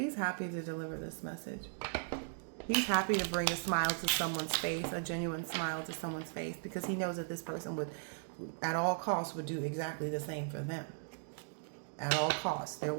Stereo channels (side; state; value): left; silent; digital silence